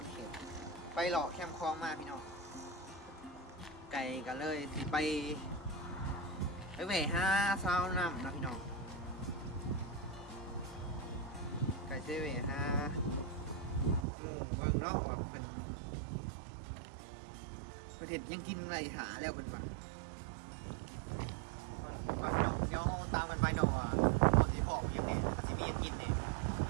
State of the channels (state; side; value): drops out; left; at 14.1 s